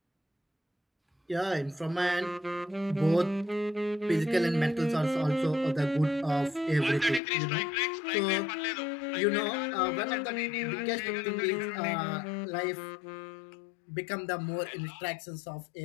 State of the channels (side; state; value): right; drops out; at 7.2 s